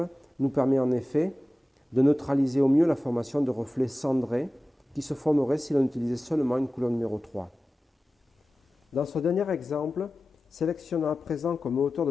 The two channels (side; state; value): both; normal; correlation 0.95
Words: nous permet en effet de neutraliser au mieux la formation de reflets cendrés qui se formeraient si l'on utilisait seulement une couleur numéro 3. Dans ce dernier exemple, sélectionnons à présent comme hauteur